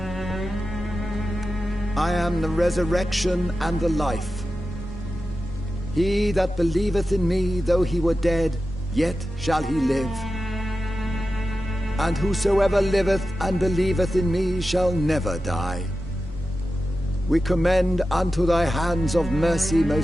I am the resurrection and the life. He that believeth in me, though he were dead, yet shall he live. And whosoever liveth and believeth in me shall never die. We commend unto thy hands of mercy,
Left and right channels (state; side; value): normal; both; correlation 0.93